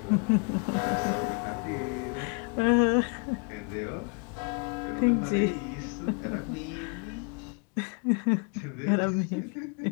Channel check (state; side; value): quieter; right; 37.1 dB